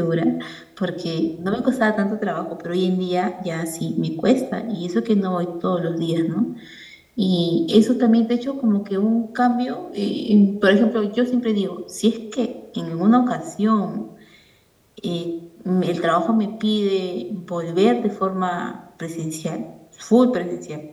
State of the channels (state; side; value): identical; both; correlation 1.00